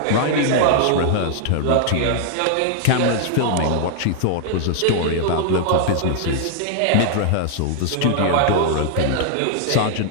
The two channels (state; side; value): different; both; correlation -0.01